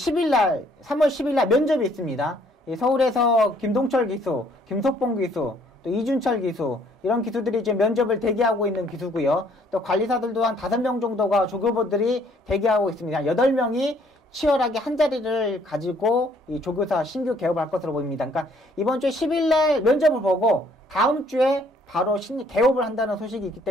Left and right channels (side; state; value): both; normal; correlation 0.63